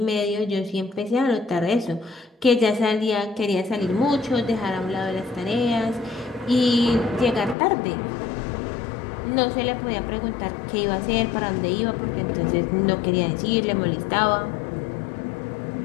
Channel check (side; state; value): right; drops out; at 7.6 s